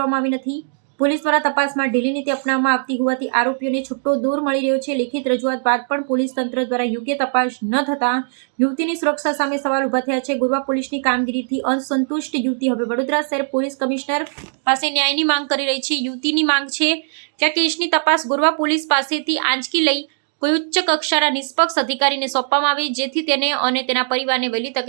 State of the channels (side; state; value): left; silent; digital silence